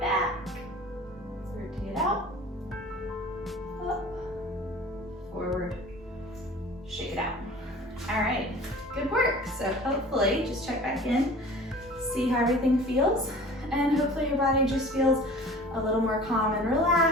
Rotate out. Up. Forward. Shake it out. All right, good work. So hopefully, just check back in, see how everything feels, and hopefully your body just feels a little more calm and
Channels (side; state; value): both; normal; correlation 0.43